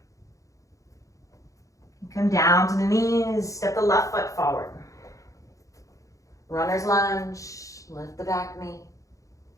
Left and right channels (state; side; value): late; right; 0.16 ms